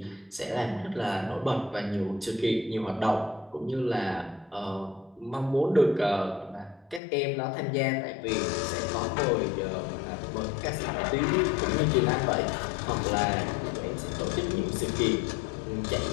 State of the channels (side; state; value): right; drops out; at 7.0 s